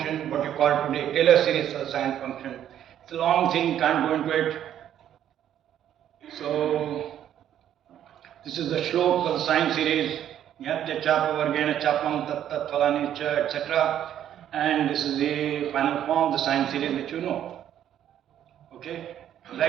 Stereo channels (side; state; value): left; quieter; 10.6 dB